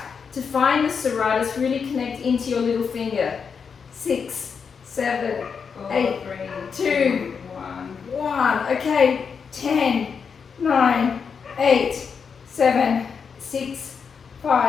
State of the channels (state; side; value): quieter; right; 6.1 dB